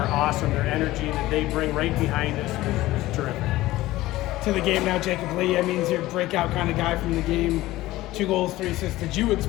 awesome. Their energy that they bring right behind us is terrific. To the game now, Jacob Lee. I mean, he's your breakout kind of guy from the game. 2 goals, 3 assists. Did you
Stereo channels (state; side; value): quieter; right; 17.1 dB